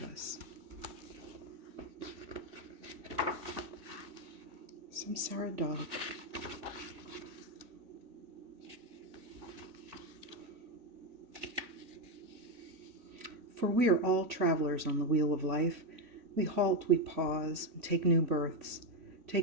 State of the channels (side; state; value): left; late; 3.5 ms